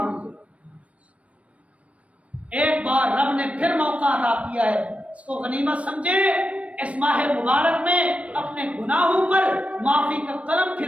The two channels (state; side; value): late; left; 0.064 ms